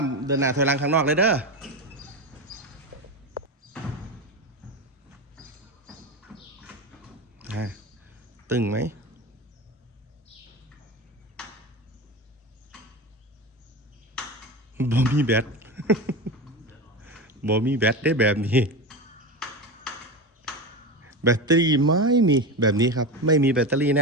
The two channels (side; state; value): both; normal; correlation 0.22